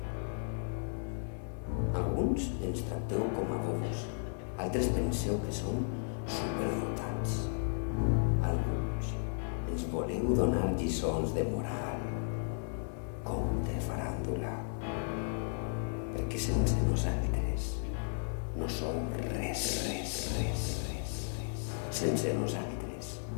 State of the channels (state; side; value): silent; right; digital silence